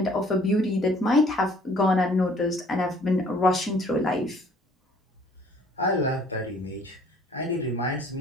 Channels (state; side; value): normal; both; correlation 0.56